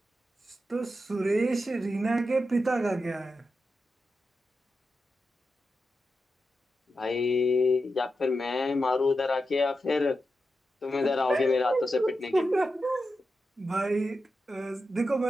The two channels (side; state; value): both; normal; correlation 0.89